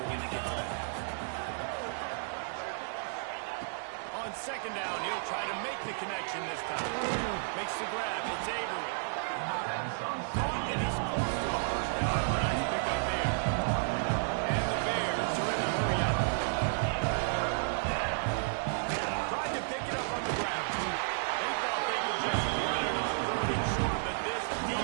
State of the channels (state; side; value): silent; left; 56 dB below the other